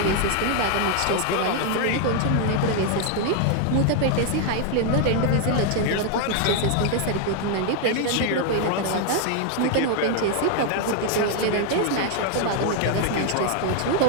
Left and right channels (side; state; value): both; different; correlation 0.00